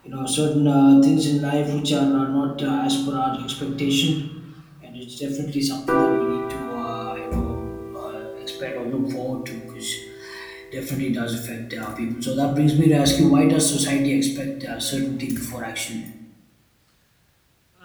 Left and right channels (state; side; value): identical; both; correlation 1.00